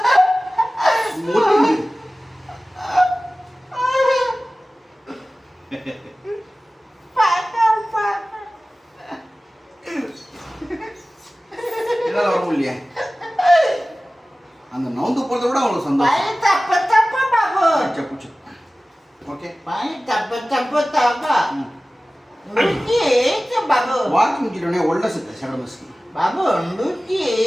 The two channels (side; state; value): both; normal; correlation 0.97